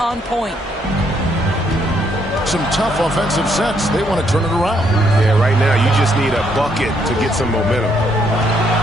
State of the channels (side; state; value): both; normal; correlation 0.72